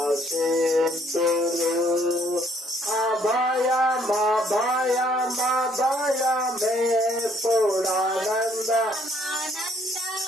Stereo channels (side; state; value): both; normal; correlation 0.64